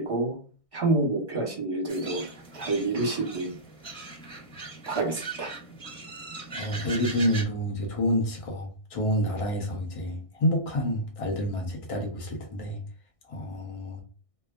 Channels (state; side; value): late; right; 1.6 ms